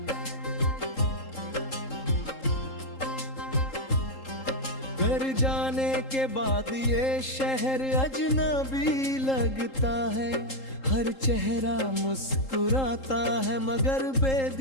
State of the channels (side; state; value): right; late; 3.8 ms